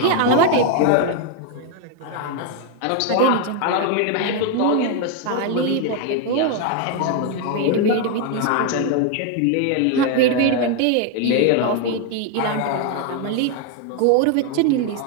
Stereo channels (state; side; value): different; both; correlation 0.01